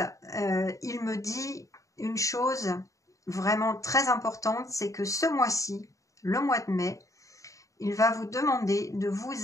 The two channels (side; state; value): right; late; 0.16 ms